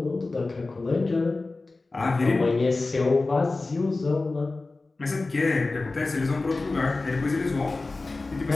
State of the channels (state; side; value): quieter; right; 3.4 dB